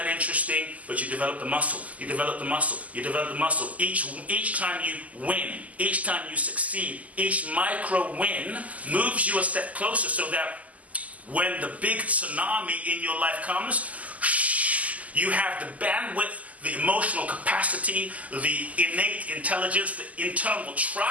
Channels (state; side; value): late; left; 0.073 ms